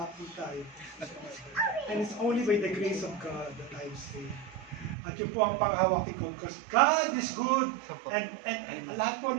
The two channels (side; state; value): left; drops out; at 5.0 s